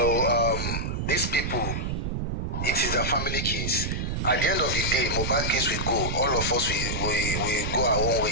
these people, it is a family case. At the end of the day, Mohbad case will go. All of us we go our own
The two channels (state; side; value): noise; right; rumble, 2 dB below the sound